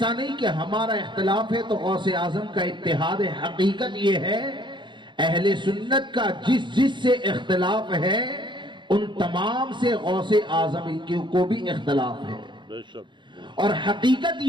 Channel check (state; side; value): late; left; 0.23 ms